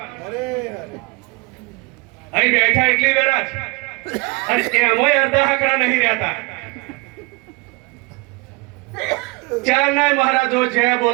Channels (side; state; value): left; quieter; 27.4 dB